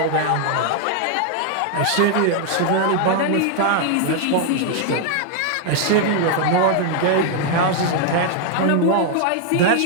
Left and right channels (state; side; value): different; both; correlation 0.00